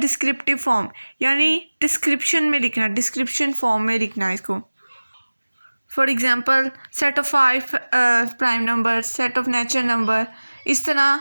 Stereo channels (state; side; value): inverted; both; correlation -1.00